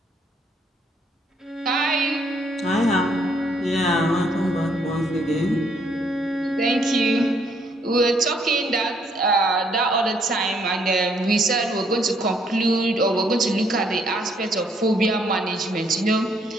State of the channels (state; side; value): normal; both; correlation 0.68